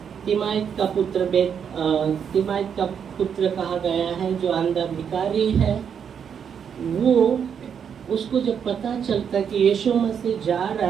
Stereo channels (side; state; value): left; quieter; 7.6 dB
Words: तिमाइत का पुत्र कहा गया है जो अंधा भिखारी है, वो उसको जब पता चलता कि यीशु मसीह जा रहा